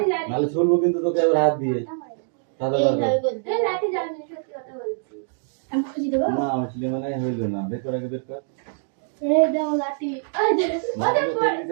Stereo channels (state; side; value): silent; left; digital silence